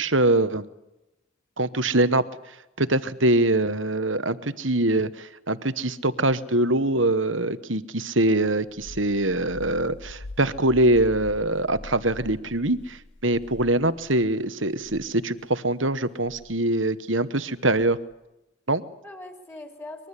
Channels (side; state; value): both; normal; correlation -0.01